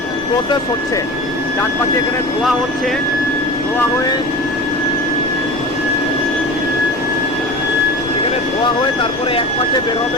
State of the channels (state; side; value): noise; left; rumble, 20 dB below the sound